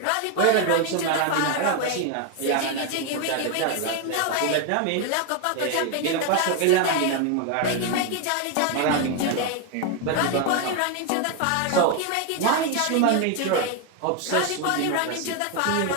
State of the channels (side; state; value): both; different; correlation 0.01